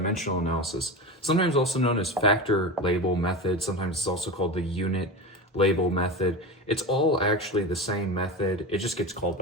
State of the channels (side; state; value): both; normal; correlation 0.25